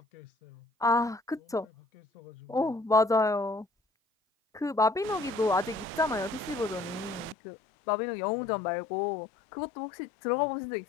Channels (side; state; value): right; drops out; at 7.4 s